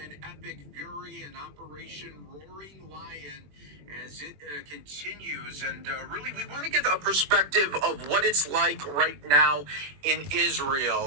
Epic Fury and Operation Roaring Lion as it continues. And really, we want to get a perspective of what it's like right now in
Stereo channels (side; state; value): left; late; 21 ms